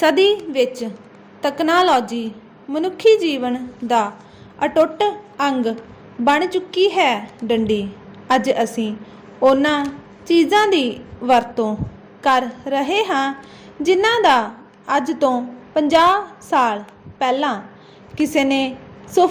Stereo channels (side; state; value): both; identical; correlation 1.00